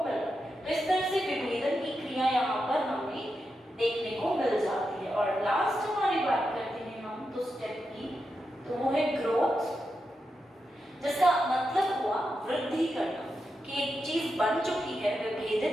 मिल रहा है। तो इस तरह से विभेदन की क्रिया यहाँ पर हमें देखने को मिल जाती है। और लास्ट हमारी बात करते हैं हम तो स्टेप की, तो वो है ग्रोथ, जिसका मतलब हुआ वृद्धि करना, कि एक चीज बन चुकी है,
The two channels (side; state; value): both; normal; correlation 0.87